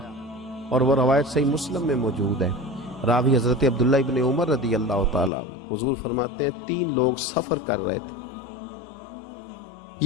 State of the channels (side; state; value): right; drops out; at 5.3 s